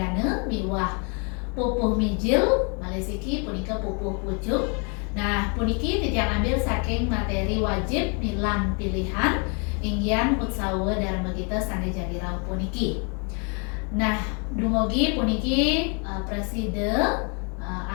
miwah pupuh mijil, malesiki punika pupuh pucuk. Nah, puniki titian ambil saking materi wajib milan pilihan inggian utsawa dharma kita sane jadi rauh puniki. Nah, dumugi puniki preside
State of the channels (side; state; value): right; quieter; 36.5 dB